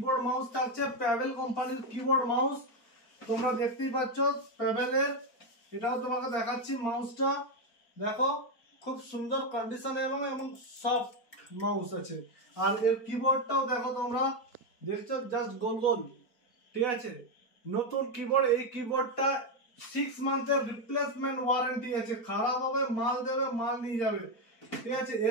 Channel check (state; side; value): late; right; 4.4 ms